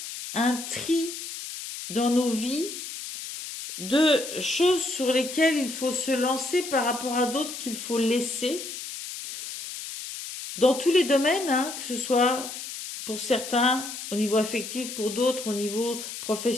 un tri dans nos vies de choses sur lesquelles il faut se lancer par rapport à d'autres qu'il faut laisser. Dans tous les domaines, que ce soit pour certains au niveau affectif, pour d'autres au niveau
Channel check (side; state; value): left; noise; hiss, 9 dB below the sound